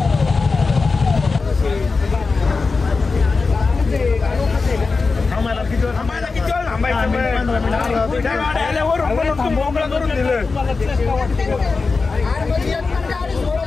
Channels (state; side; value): quieter; right; 4.2 dB